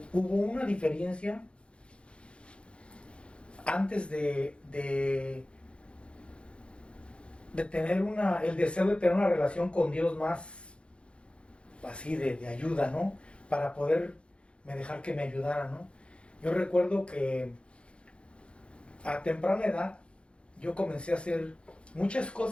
una diferencia antes de tener el deseo de tener una relación con Dios más así de ayuda, ¿no? Para poder dejar que me ayudara, ¿no? Yo recuerdo que a temprana edad yo comencé a hacer muchas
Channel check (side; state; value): right; late; 0.058 ms